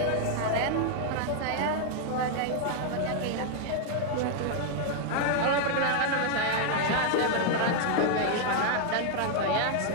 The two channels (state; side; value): different; both; correlation 0.00